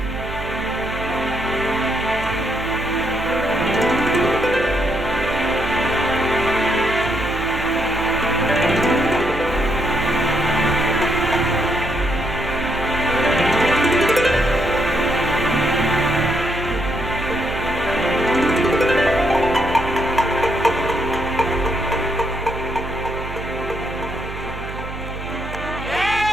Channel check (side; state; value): right; noise; hum, 10 dB below the sound